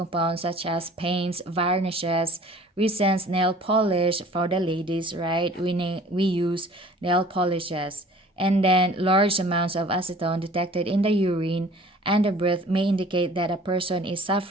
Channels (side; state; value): both; normal; correlation 0.49